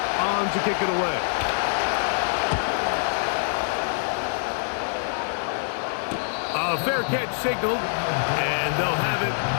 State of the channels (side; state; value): right; silent; digital silence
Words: on to kick it away. A fair catch signaled, and they'll have it